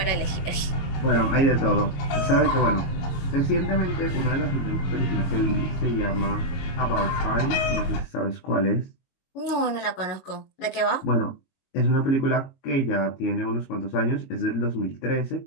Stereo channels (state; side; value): late; right; 22 ms